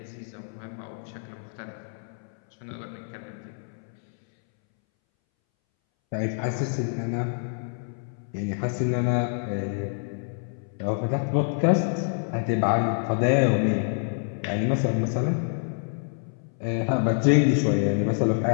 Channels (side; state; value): right; silent; 60 dB below the other